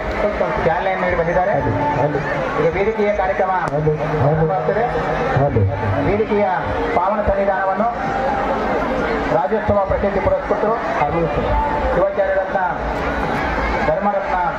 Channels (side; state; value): both; identical; correlation 1.00